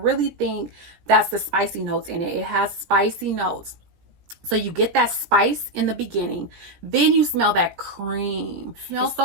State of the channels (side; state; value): left; late; 17 ms